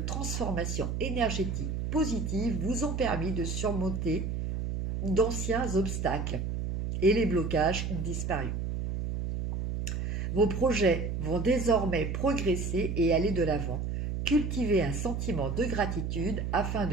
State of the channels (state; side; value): noise; right; hum, 2 dB below the sound